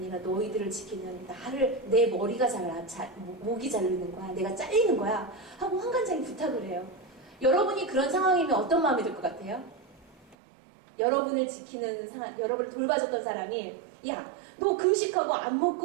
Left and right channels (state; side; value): drops out; left; at 10.4 s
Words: 너희들을 지키는 내 머리가 목이 자르는 거야. 내가 잘리는 거야. 하고 환관장이 부탁을 해요. 여러분이 그런 상황이면 어떤 마음이 들 것 같아요? 여러분을 지키는 여러분을 돌봐줬던 사람이 야, 너 금식하고 안